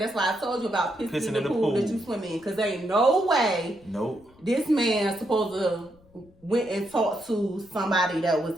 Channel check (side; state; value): left; noise; rumble, 29 dB below the sound